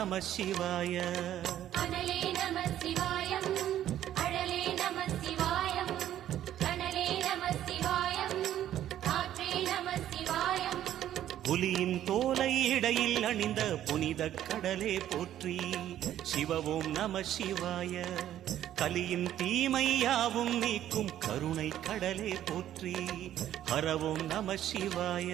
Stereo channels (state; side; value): quieter; left; 11.8 dB